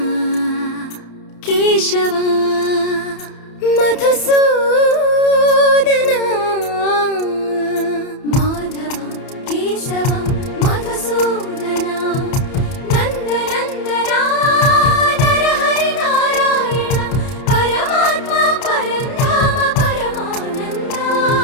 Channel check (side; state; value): right; late; 31 ms